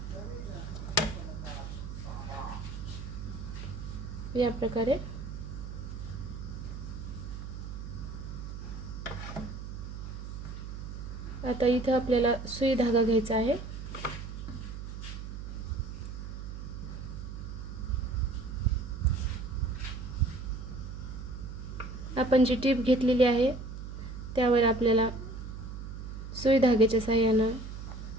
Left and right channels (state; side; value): noise; right; hum, 8 dB below the sound